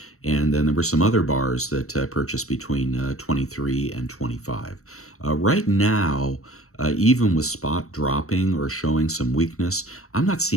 And then there were some other bars that I purchased between 23 and 25. Right now, even with spot dropping or showing some weakness, I'm not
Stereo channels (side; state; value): right; late; 0.64 ms